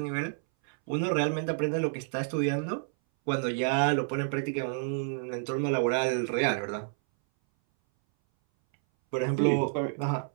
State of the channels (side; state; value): left; silent; 58 dB below the other